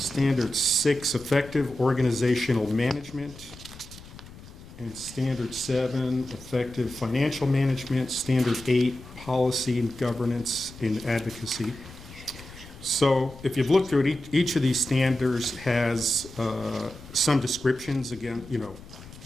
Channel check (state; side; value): noise; left; rumble, 18 dB below the sound